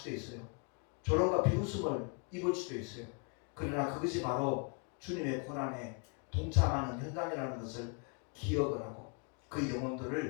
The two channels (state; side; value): quieter; right; 36.0 dB